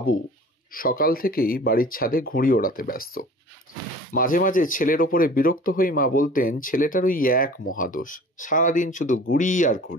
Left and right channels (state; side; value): normal; both; correlation 0.45